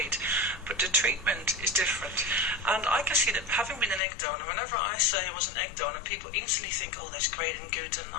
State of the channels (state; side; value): drops out; right; at 4.0 s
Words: but the treatment is different. And I can see that having been an egg donor, whenever I say I was an egg donor, people instantly think, oh, that's great and good, and